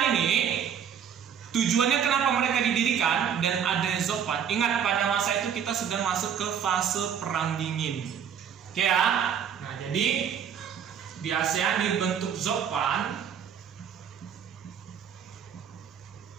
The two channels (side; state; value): left; quieter; 8.2 dB